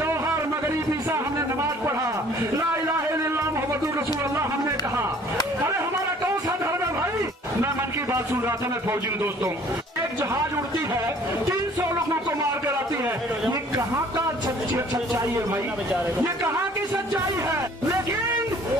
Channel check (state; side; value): normal; both; correlation 0.54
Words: मगरिब ईसा हमने नमाज पढ़ा, ला इलाहा इल्लल्लाह मुहम्मदुर रसूलुल्लाह हमने कहा। अरे हमारा कौन सा धर्म है भाई? मैं मन की बात सुन रहा था, मैं फौजी हूं दोस्तों। एक जहाज उड़ती है, 300 लोगों को मार कर आती है। ये कहाँ का सच्चाई है भाई? ये कहाँ की सच्चाई है? लेकिन